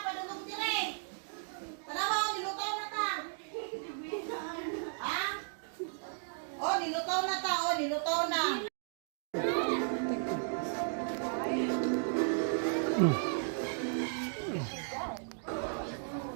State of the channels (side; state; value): left; silent; digital silence